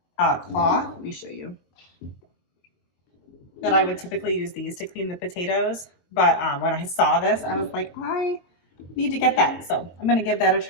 claw. Let me show you. That I would typically use these to clean the potatoes. But when I saw this, I was like, I need to get that. So I'm gonna give that a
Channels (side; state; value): right; late; 22 ms